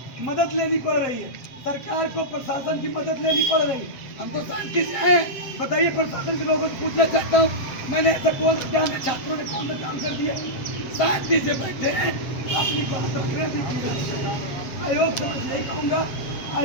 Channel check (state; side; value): late; right; 7.7 ms